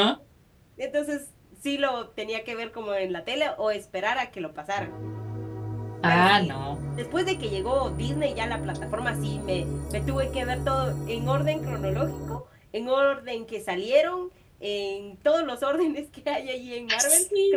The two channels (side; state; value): both; identical; correlation 1.00